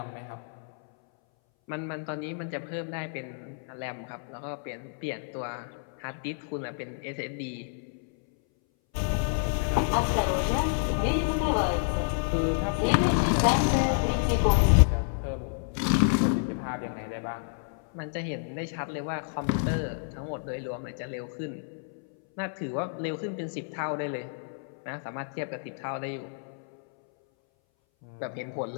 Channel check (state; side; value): silent; right; 58 dB below the other